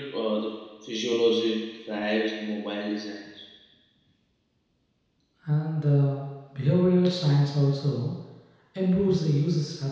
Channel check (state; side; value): identical; both; correlation 1.00